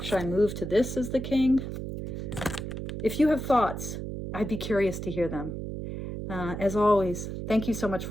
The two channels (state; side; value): noise; right; hum, 6 dB below the sound